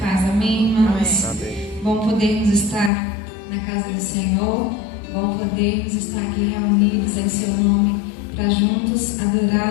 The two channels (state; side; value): drops out; right; at 2.9 s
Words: amém, irmãos? Amém. Bom podermos estar na casa do Senhor, bom podermos estar aqui reunidos em seu nome, para juntos